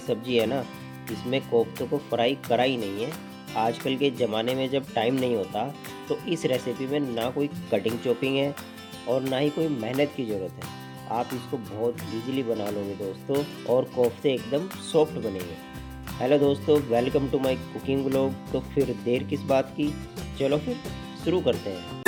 है ना, इसमें कोफ्तों को फ्राई करा ही नहीं है। आजकल के ज़माने में जब टाइम नहीं होता, तो इस रेसिपी में ना कोई कटिंग चॉपिंग है और ना ही कोई मेहनत की ज़रूरत है। आप इसको बहुत ईज़िली बना लोगे दोस्तों, और कोफ्ते एकदम सॉफ्ट बनेंगे। हेलो दोस्तों, welcome to my cooking vlog. तो फिर देर किस बात की, चलो फिर शुरू करते हैं।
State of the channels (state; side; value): identical; both; correlation 1.00